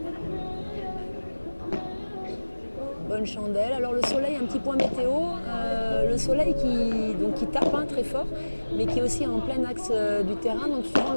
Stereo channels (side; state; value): both; inverted; correlation -1.00